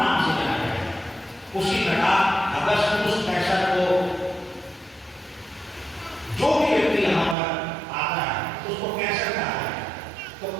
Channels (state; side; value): drops out; left; at 7.4 s